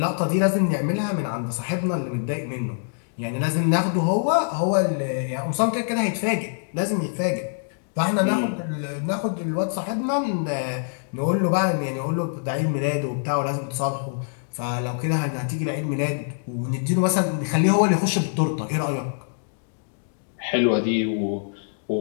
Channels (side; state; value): right; silent; digital silence